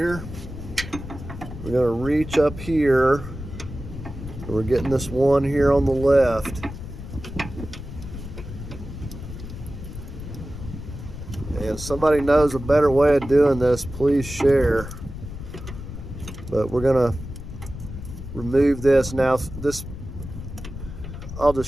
We're going to reach up here. And we're getting this one here on the left. And if somebody knows a better way of doing this, please share. But we're going to remove this now. This I'll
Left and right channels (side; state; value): left; noise; rumble, 10 dB below the sound